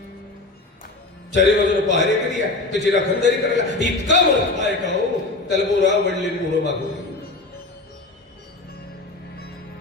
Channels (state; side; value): quieter; right; 3.2 dB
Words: चारी बाजूला पहारे केली आहे. त्याची राखणदारी करायला इतका मोठा आहे का हो. त्याला बोरा आवडले बोरं मागवले.